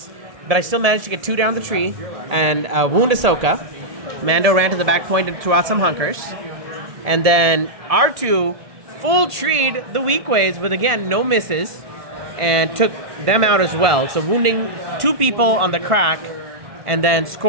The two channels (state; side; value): late; left; 1.7 ms